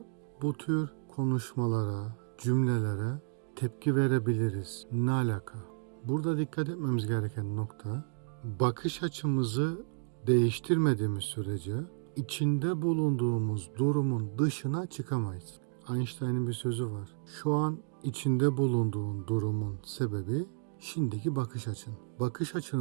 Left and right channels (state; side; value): silent; left; digital silence